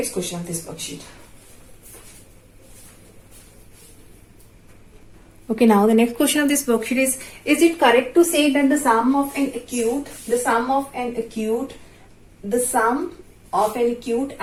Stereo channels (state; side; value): identical; both; correlation 1.00